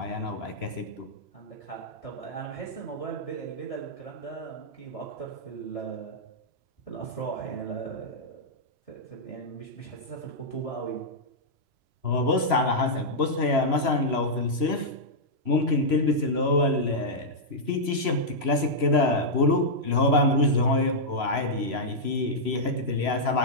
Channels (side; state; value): left; late; 3.0 ms